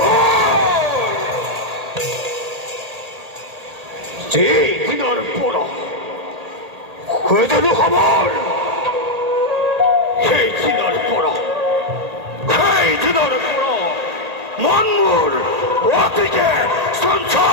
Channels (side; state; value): left; late; 1.8 ms